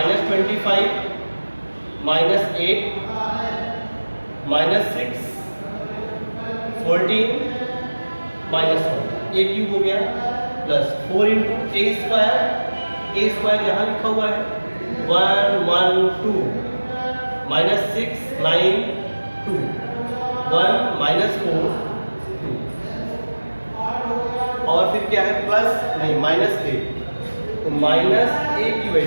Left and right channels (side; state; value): both; inverted; correlation -1.00